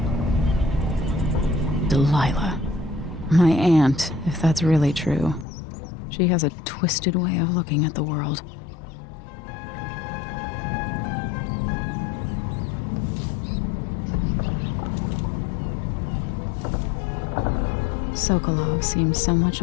Delilah. My aunt, if that's really true. She has a twisted way of looking at the world. Sokolov seems so much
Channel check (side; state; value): right; drops out; at 5.5 s